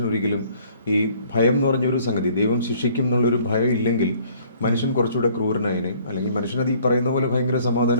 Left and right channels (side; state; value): both; inverted; correlation -0.59